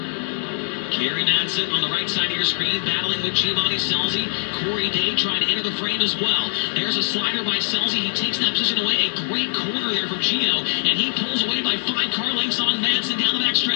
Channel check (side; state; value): right; silent; digital silence